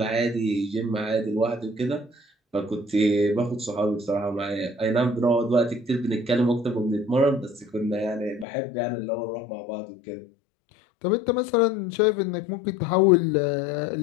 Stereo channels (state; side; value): drops out; right; at 8.5 s